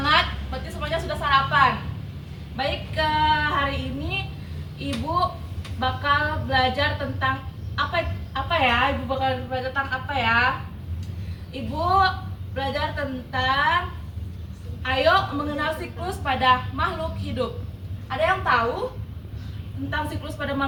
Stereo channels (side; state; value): both; identical; correlation 1.00